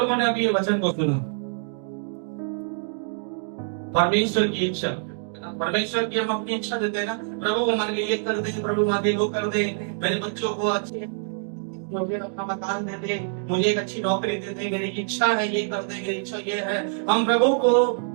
ने अभी ये वचन को सुना? परमेश्वर की इच्छा। परमेश्वर की हम अपनी इच्छा देते हैं ना, प्रभु हमारे लिए ये कर दे, प्रभु हमारे लिए वो कर दे, मेरे बच्चों को अच्छे, मुझे अपना मकान दे दे, मुझे एक अच्छी नौकरी दे दे, मेरी इच्छा है ये कर दे, मेरी इच्छा ये है। हम प्रभु को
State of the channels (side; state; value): left; silent; digital silence